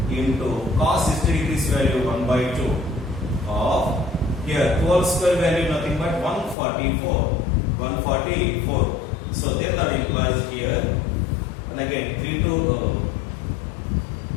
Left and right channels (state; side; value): drops out; right; at 6.6 s